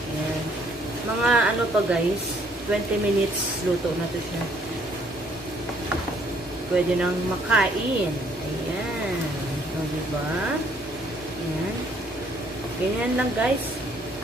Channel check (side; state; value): both; normal; correlation 0.64